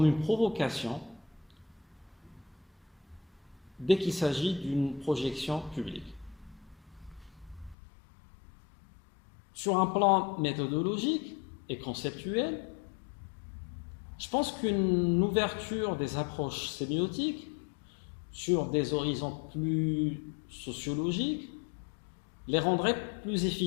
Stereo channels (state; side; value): drops out; right; at 7.8 s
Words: une provocation dès qu'il s'agit d'une projection publique. Sur un plan méthodologique et conceptuel, je pense qu'une ouverture des approches sémiotiques sur des horizons plus sociologiques les rendrait plus